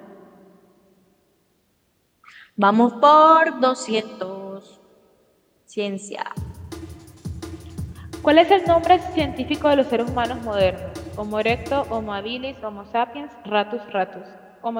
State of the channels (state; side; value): identical; both; correlation 1.00